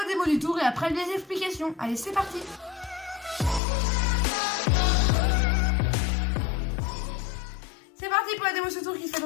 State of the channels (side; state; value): right; drops out; at 3.6 s